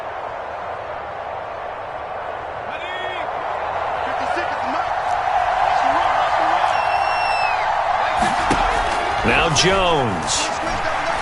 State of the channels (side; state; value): both; identical; correlation 1.00